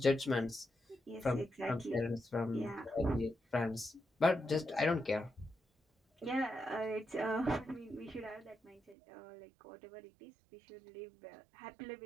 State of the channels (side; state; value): left; drops out; at 9.0 s